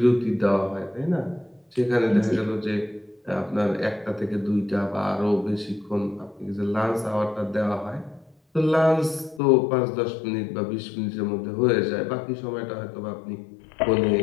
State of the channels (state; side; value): drops out; right; at 9.4 s